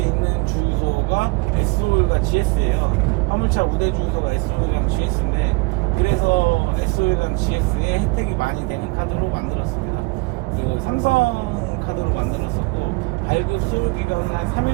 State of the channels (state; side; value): quieter; left; 26.9 dB